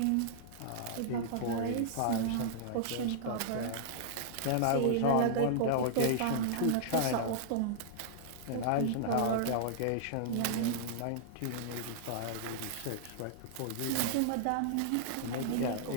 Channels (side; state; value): both; different; correlation -0.01